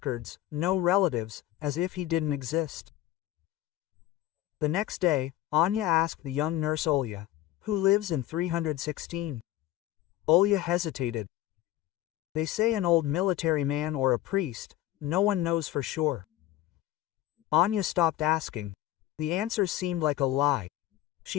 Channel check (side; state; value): right; quieter; 14.3 dB